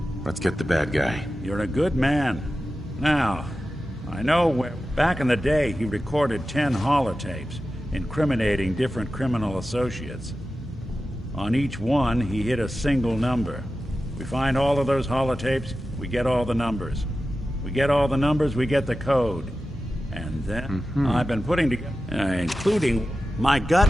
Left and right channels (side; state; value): both; normal; correlation 0.93